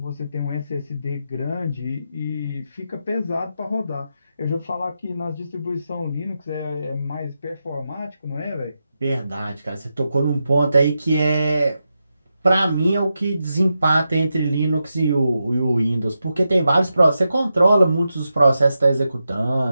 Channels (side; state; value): both; inverted; correlation -0.87